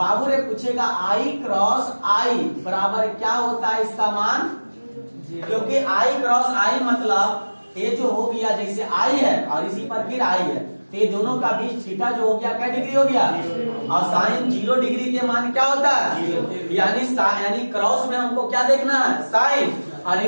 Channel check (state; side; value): inverted; both; correlation -1.00